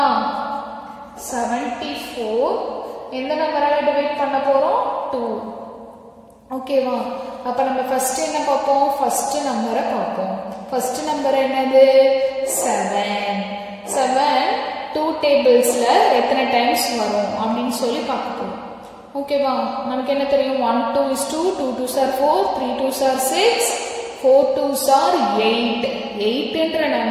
74 எந்த நம்பரால டிவைட் பண்ண போறோம்? 2. ஓகேவா? அப்ப நம்ம ஃபர்ஸ்ட் என்ன பார்ப்போம்? ஃபர்ஸ்ட் நம்பரை பார்ப்போம். ஃபர்ஸ்ட் நம்பர் என்னது? 7. 7 2 டேபிள்ஸ்ல எத்தனை டைம்ஸ் வரும் அப்படின்னு சொல்லி பார்க்க போறோம். ஓகேவா? நமக்கு என்ன தெரியும்? 1 2 is 2, 2 2s are 4, 3 2s are 6, 4 2s are 8. 8ன்ற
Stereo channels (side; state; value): both; identical; correlation 1.00